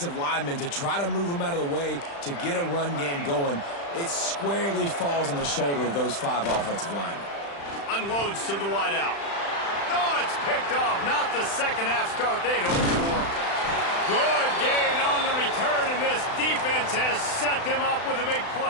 linemen, to try to move them out of the way, to get a run game going, it squarely falls on the shoulder of those 5 offensive linemen. Unloads to the wideout. Oh, it's picked off. Not the second half start they'd hoped for. Good gain on the return, and this defense has set them up with a big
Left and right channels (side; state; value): right; late; 35 ms